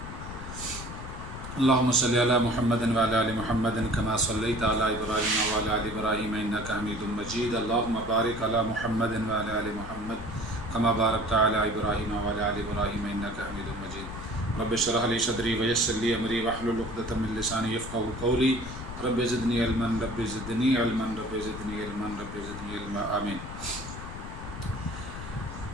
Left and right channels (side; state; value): left; noise; rumble, 10 dB below the sound